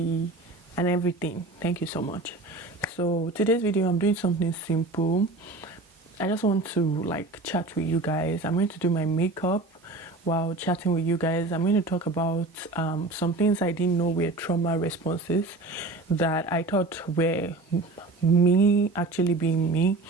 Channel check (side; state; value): left; quieter; 3.1 dB